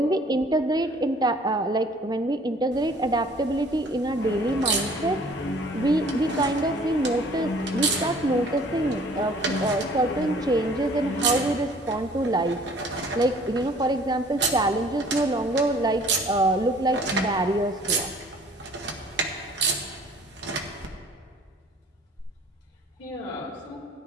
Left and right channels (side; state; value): both; normal; correlation 0.53